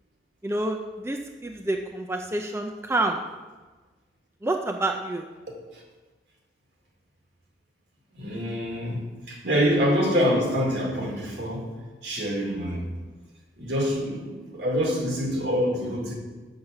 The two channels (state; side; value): normal; both; correlation 0.56